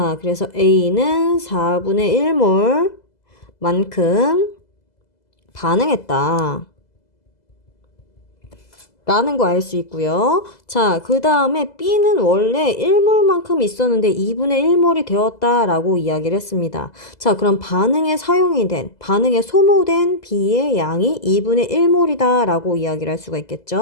그래서 A는 4분의 1몰만큼 반응했다. 라는 거 알 수 있고요. 자, 그 다음에 B는 원래 1몰만큼 있었는데 2분의 1몰이 되었다라고 이야기를 했습니다. 자, 그럼 반응에 소모된 B의 양이 2분의 1몰이다 라고 이야기를 할 수가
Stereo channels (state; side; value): late; right; 2.0 ms